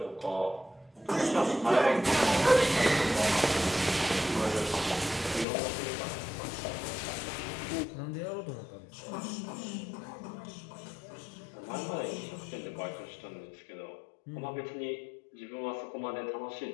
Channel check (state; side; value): drops out; right; at 5.5 s